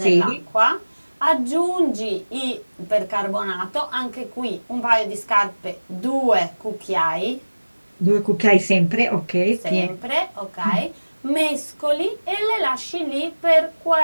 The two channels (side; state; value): both; inverted; correlation -1.00